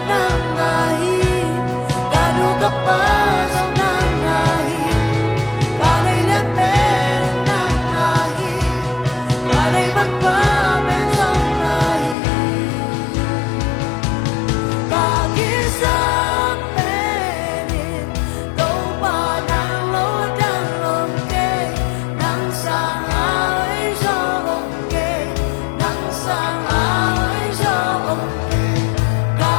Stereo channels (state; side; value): drops out; right; at 12.2 s